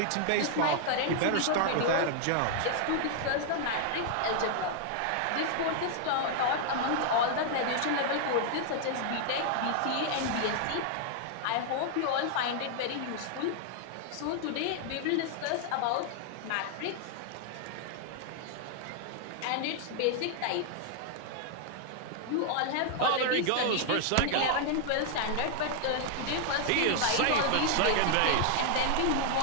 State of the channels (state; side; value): different; both; correlation 0.00